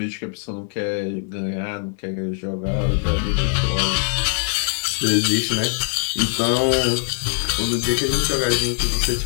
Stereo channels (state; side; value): silent; right; 57 dB below the other